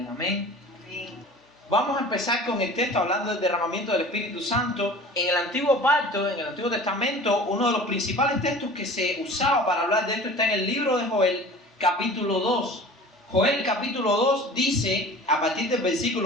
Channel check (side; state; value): both; normal; correlation 0.41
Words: Amén. Vamos a empezar con el texto hablando del derramamiento del Espíritu Santo. En el Antiguo Pacto, en el Antiguo Testamento, uno de los principales textos que se usaba para hablar de esto está en el libro de Joel, capítulo 2. Joel capítulo 2 dice, a partir del